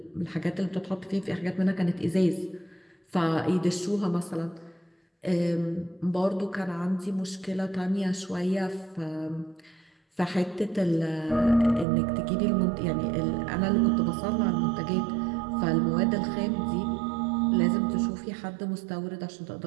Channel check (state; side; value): drops out; left; at 11.9 s